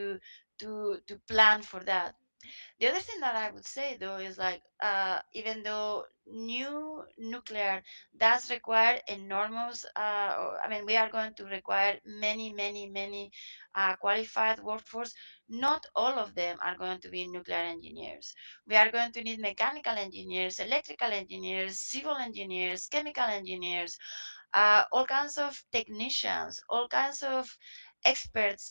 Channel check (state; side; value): inverted; both; correlation -1.00